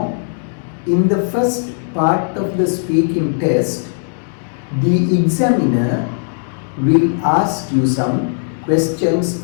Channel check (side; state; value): right; silent; digital silence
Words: in the first part of the speaking test, the examiner will ask you some questions